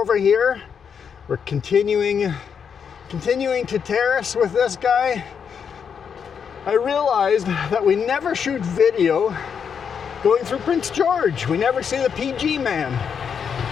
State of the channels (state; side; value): quieter; right; 7.0 dB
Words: here. We're continuing to terrace with this guy. I realized that we never shoot video going through Prince George. We never see the PG man.